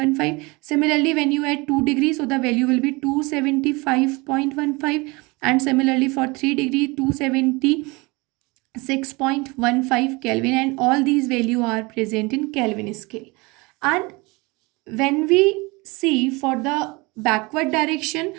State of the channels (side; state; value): left; quieter; 25.3 dB